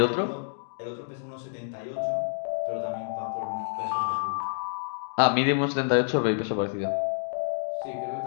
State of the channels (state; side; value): silent; right; digital silence